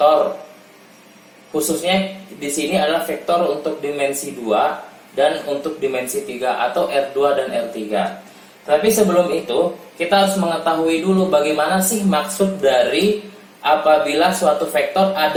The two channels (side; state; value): both; identical; correlation 1.00